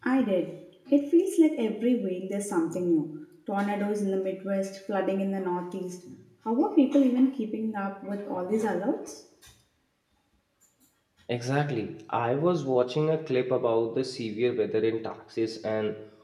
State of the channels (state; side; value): identical; both; correlation 1.00